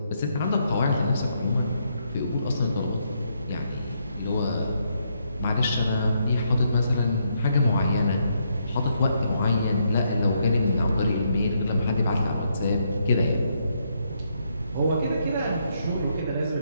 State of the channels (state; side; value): inverted; both; correlation -0.76